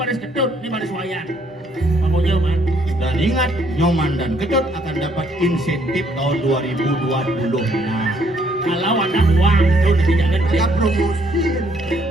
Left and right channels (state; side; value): normal; both; correlation 0.68